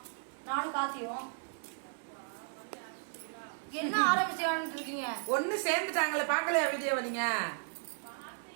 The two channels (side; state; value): left; silent; digital silence